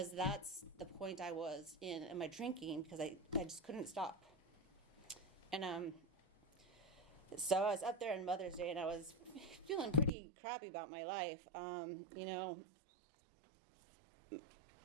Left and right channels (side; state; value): left; drops out; at 10.1 s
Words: that's the point I was in my drinking, because I just couldn't stop. And so I was up there on Mother's Day, and I was feeling pretty crappy about my life.